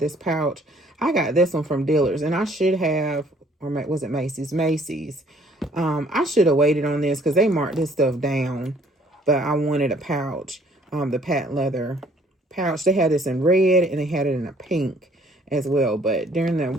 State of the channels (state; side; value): normal; both; correlation 0.60